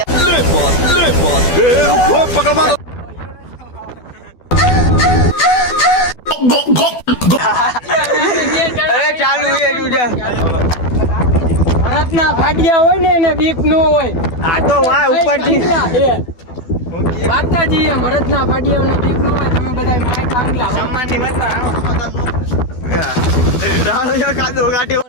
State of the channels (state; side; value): late; right; 12 ms